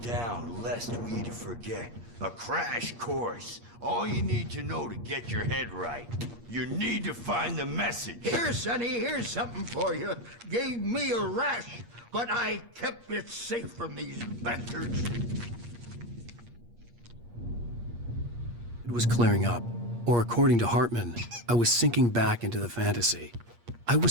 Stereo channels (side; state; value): left; late; 8.5 ms